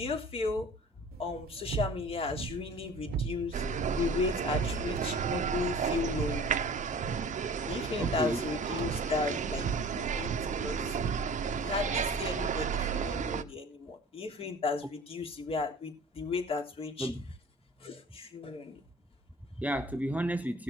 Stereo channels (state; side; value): normal; both; correlation 0.43